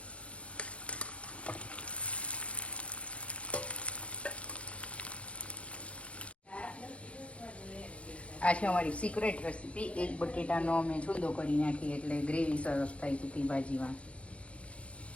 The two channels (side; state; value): right; late; 0.062 ms